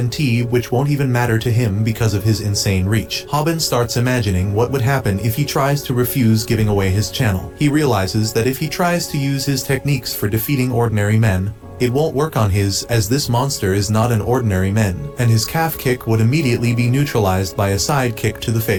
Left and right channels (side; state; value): both; identical; correlation 1.00